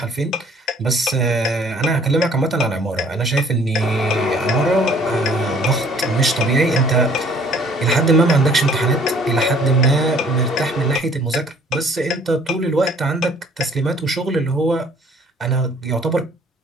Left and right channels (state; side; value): normal; both; correlation 0.57